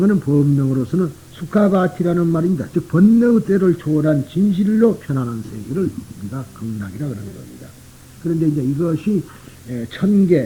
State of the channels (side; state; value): both; identical; correlation 1.00